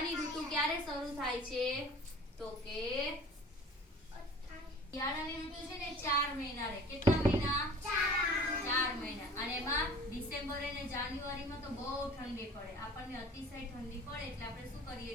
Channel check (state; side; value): normal; both; correlation 0.45